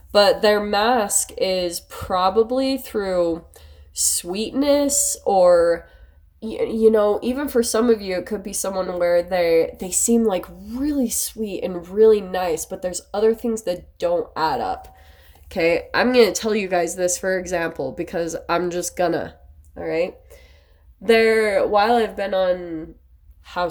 but their mask is probably through sweetness, or even for some of you, it could be someone where they seem like really sweet and really nice, but there's other things that don't add up. Okay, I'm gonna tell you guys this for example because I'm just gonna. All right, while I've been on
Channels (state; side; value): identical; both; correlation 1.00